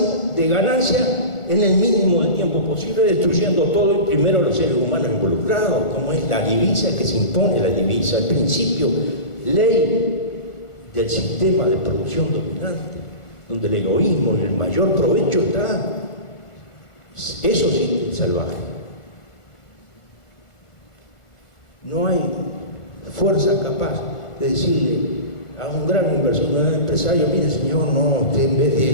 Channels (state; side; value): late; right; 1.4 ms